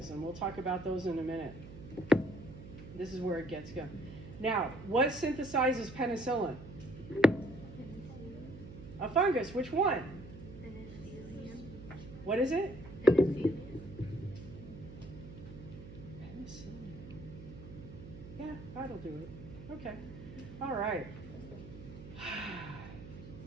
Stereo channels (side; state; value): right; noise; hum, 14 dB below the sound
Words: and we'll talk about those in a minute. This is where it gets going. Now, what synthesizes penicillin? A fungus. Which one? What is it? Penicillin. Yeah, that'll do it. Okay. All right.